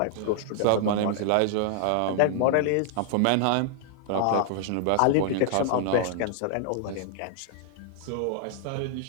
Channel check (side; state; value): both; different; correlation 0.00